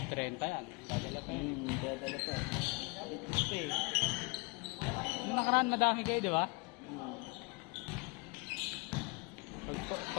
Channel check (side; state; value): right; quieter; 28.5 dB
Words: 30 yan. Dadala pa yun. Dadala pa. Ito eh. Nung nakaraan, madami kayo, di ba?